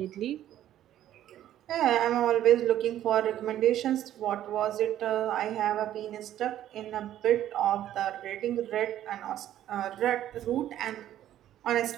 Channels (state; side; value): quieter; left; 12.1 dB